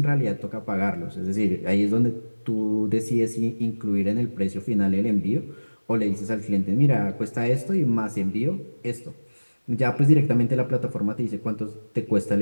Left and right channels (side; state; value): both; inverted; correlation -1.00